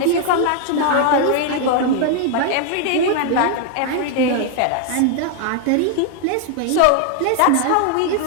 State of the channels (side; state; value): both; different; correlation 0.00